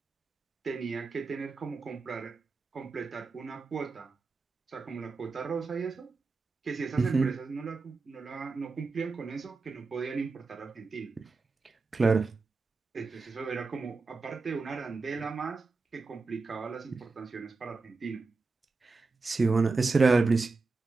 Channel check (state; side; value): quieter; left; 4.1 dB